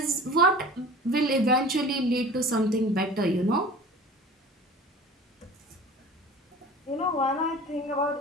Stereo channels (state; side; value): normal; both; correlation 0.41